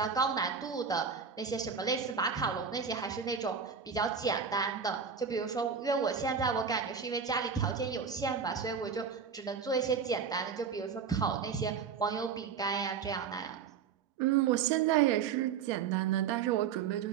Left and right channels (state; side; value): quieter; left; 6.5 dB